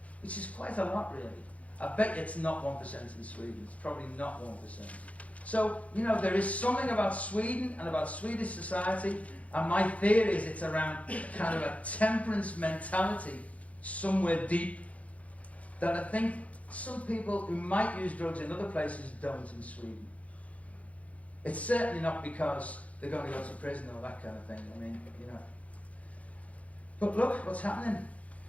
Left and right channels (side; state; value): right; late; 0.066 ms